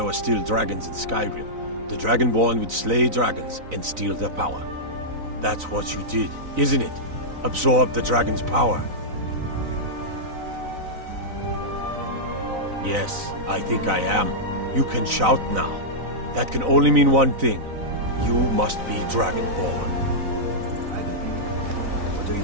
were still dragons in Skyrim, the Dragonborn would slay dragons and steal their power. That's what you did, isn't it? Absorb the dragon's power. Yes, I think I am. You can shout now. That can only mean one thing. You must be Dragonborn. What are you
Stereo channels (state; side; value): late; left; 4.0 ms